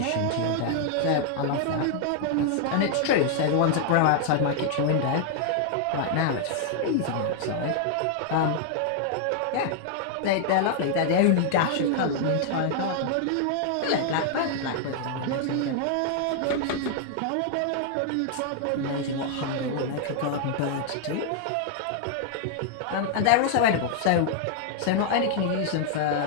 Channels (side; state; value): both; different; correlation 0.00